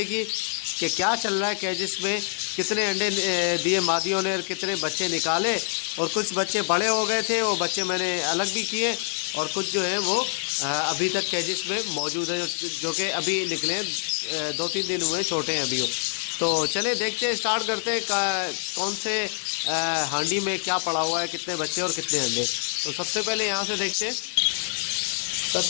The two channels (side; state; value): right; silent; digital silence